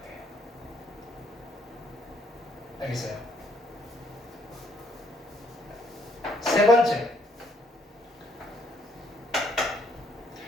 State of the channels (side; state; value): both; normal; correlation 0.68